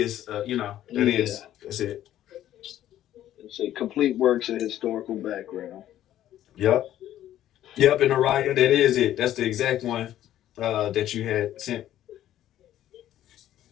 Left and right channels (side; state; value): right; quieter; 12.4 dB